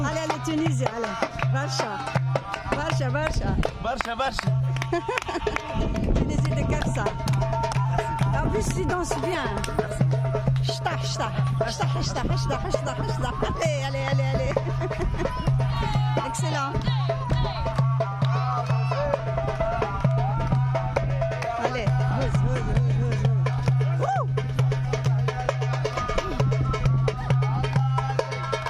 allez, Tunisie, allez. Barcha. Barcha, Barcha. Barcha, Barcha. Tunisie de Kafsa. En plus, tu danses bien. Chta, chta. Chta, chta, chta, chta, chta. Allez, allez, allez, allez. Excellent. Allez,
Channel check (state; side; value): identical; both; correlation 1.00